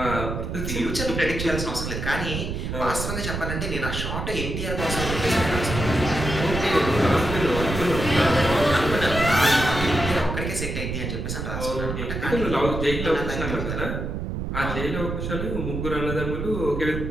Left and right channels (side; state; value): right; noise; rumble, 4 dB below the sound